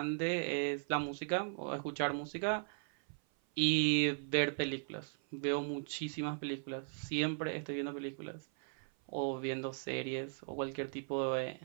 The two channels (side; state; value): left; silent; 53 dB below the other